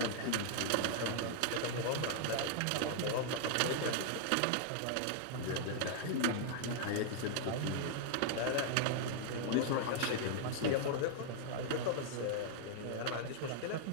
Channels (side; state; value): both; different; correlation -0.01